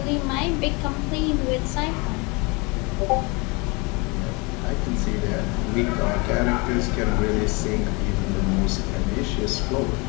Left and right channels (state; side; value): quieter; right; 28.3 dB